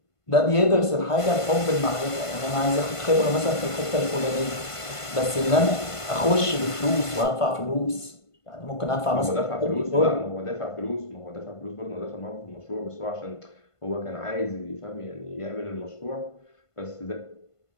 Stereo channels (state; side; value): late; right; 1.5 ms